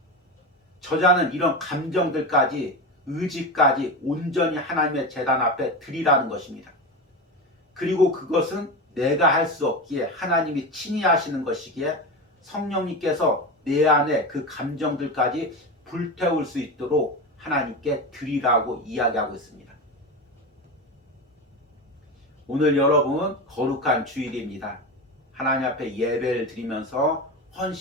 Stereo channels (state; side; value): normal; both; correlation 0.22